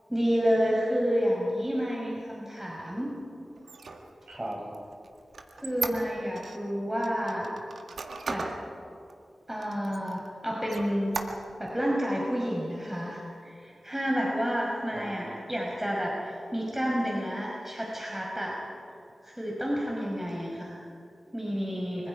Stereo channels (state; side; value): normal; both; correlation 0.96